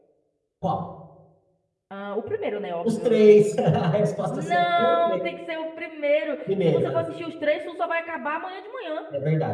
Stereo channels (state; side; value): identical; both; correlation 1.00